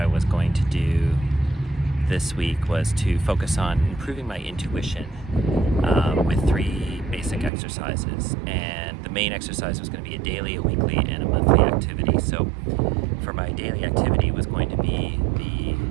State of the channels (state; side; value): drops out; left; at 7.5 s